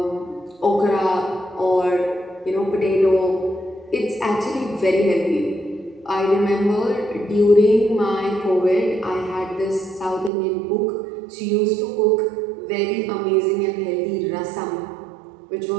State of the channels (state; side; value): drops out; left; at 10.3 s